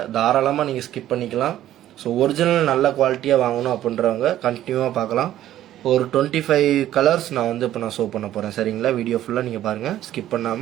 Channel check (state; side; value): quieter; left; 12.8 dB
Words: தாராளமாக நீங்கள் ஸ்கிப் பண்ணிக்கலாம். ஸோ ஒரிஜினல் நல்ல குவாலிட்டியாக வாங்கணும் அப்படின்றவங்க கண்டினியூவாக பார்க்கலாம். ஒரு 25 கலர்ஸ் நான் வந்து இப்போ நான் ஷோ பண்ண போகிறேன், சரிங்களா? வீடியோ ஃபுல்லாக நீங்கள் பாருங்கள், ஸ்கிப்